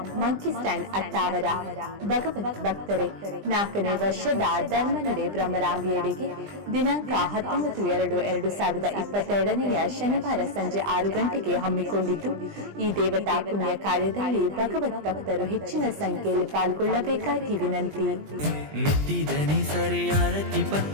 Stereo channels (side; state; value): left; late; 20 ms